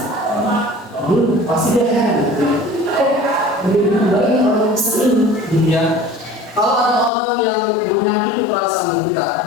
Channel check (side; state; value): right; drops out; at 7.1 s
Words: Pasti dia heran. Begitu baik orang yang sering dia. Kalau ada orang yang menyakiti perasaan kita,